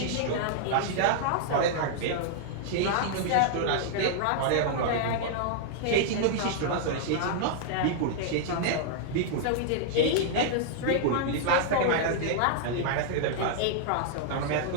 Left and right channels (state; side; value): different; both; correlation -0.01